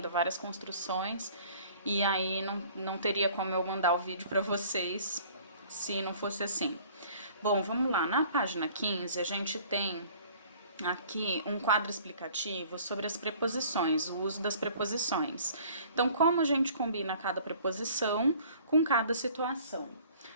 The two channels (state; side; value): inverted; both; correlation -0.52